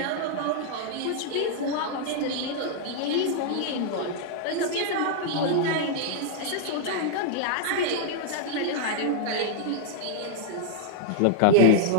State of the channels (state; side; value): different; both; correlation -0.01